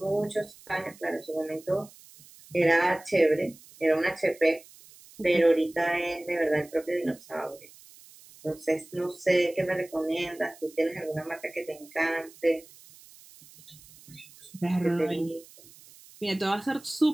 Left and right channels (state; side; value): noise; right; hiss, 22 dB below the sound